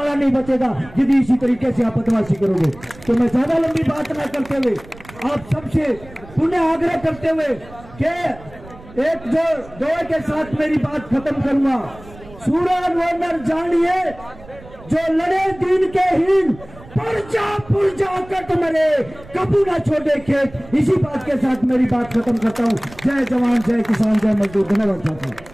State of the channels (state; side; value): noise; right; rumble, 20 dB below the sound